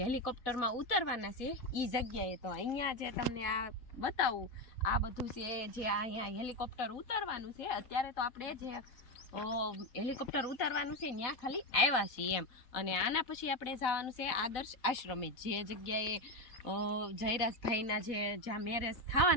હેલિકોપ્ટરમાં ઉતરવાના છે ઈ જગ્યાએ. તો અહીંયા જે તમને આ બતાવું, આ બધું છે જે અહીંયા હેલિકોપ્ટર ઉતરવાનું છે. અત્યારે તો આપણે જે હેલિકોપ્ટર ઉતારવાનું છે ત્યાં ખાલી આવ્યા છીએ એમ. અને આના પછી આપણે જવાનું છે આદર્શ આશ્રમે, જે જગ્યાએ જયરાજભાઈના જ્યાં મેરેજ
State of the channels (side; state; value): right; late; 4.4 ms